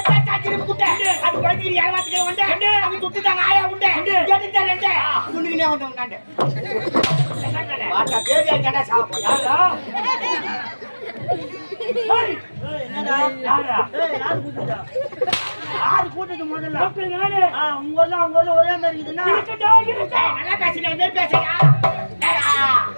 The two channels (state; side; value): inverted; both; correlation -1.00